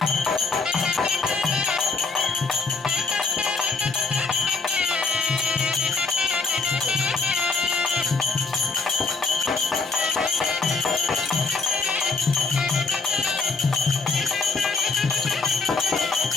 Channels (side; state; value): right; quieter; 4.2 dB